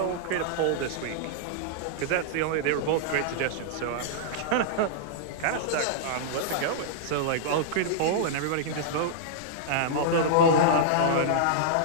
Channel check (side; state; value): both; different; correlation -0.02